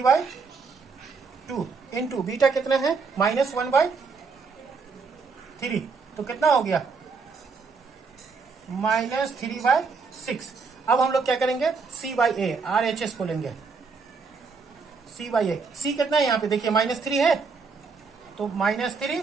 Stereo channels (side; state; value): left; quieter; 4.9 dB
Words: इंटू बीटा कितना है -1/3, तो कितना हो गया -3/6। अब हम लोग क्या करेंगे, c/a, RHS को लेंगे, c/a, c कितना है यहाँ पे देखिए -3 है, तो -3